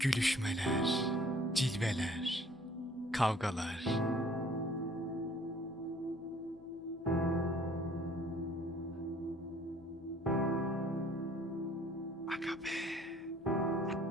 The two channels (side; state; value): left; noise; hum, 27 dB below the sound